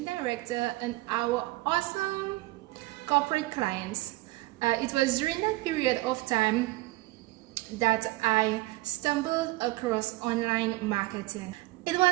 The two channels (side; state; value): left; quieter; 20.0 dB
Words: director and our awesome corporate clients. It was during that period of time that I stumbled across online marketing. It